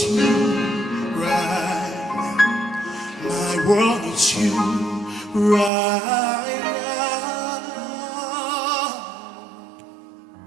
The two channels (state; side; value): drops out; left; at 5.7 s